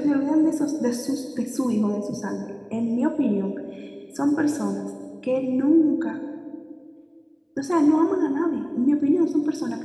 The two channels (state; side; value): identical; both; correlation 1.00